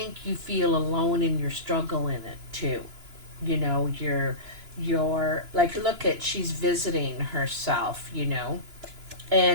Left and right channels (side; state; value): left; late; 2.9 ms